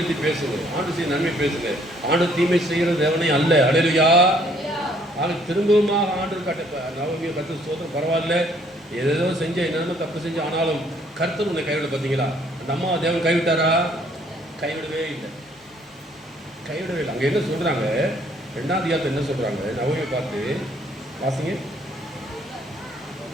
பேசுங்க, ஆண்டு செய்ய நன்மை பேசுங்க. ஆண்டு தீமை செய்கிற தேவனே அல்ல. அல்லேலூயா. ஆக திரும்பவுமாக ஆண்டு நவமியை கர்த்தர் சொல்றோம். பரவாயில்ல, ஏதேதோ செஞ்ச என்னென்ன தப்பு செஞ்சு, ஆனாலும் கர்த்தர் உன்னை கைவிட. பார்த்தீங்களா, அந்த அம்மா தேவன் கைவிட்டாரா? கைவிடவே இல்லை. அங்க என்ன சொல்றாங்க? 2ஆம் அதிகாரத்தில் என்ன சொல்றாங்க? நவமியை பார்த்து வாசிங்க.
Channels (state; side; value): normal; both; correlation 0.63